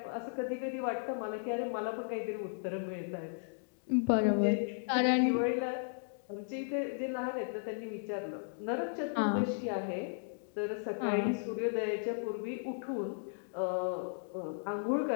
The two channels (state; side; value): silent; right; digital silence